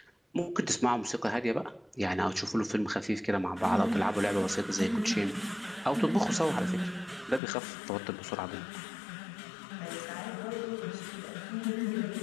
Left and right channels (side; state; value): right; drops out; at 7.4 s